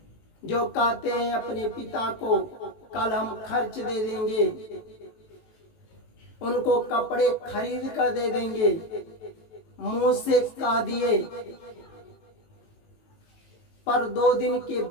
जो कहते हैं अपने पिता को कल हम खर्च दे देंगे, उनको कपड़े खरीद कर दे देंगे, मुंह से कह दिए, पर 2 दिन के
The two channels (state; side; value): late; right; 18 ms